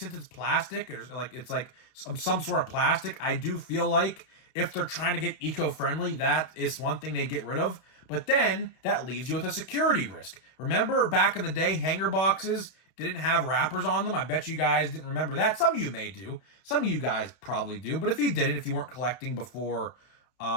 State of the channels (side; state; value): right; late; 32 ms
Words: it's plastic, or like it's like some sort of plastic, I do feel like if they're trying to get eco-friendly, that is one thing they get rid of. But then that leaves you with a security risk. Remember back in the day, hanger boxes didn't have wrappers on them? I bet you guys didn't remember that. Some of you may do. Some of you guys probably do. But if you didn't, if you weren't collecting before